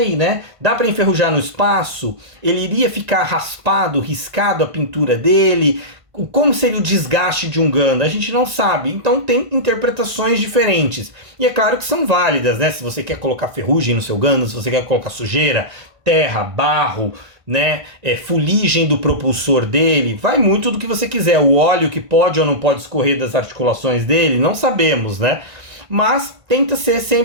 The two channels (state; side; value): late; left; 1.5 ms